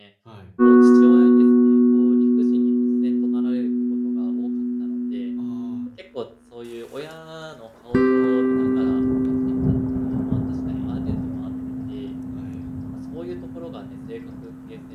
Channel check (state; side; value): identical; both; correlation 1.00